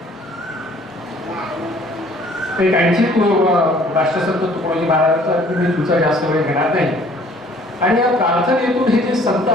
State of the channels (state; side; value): normal; both; correlation 0.56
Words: एक आणखी राष्ट्रसंत तुकडोजी महाराजांचा मी तुमचा जास्त वेळ घेणार नाही. आणि या प्रार्थनेतून हे जे संत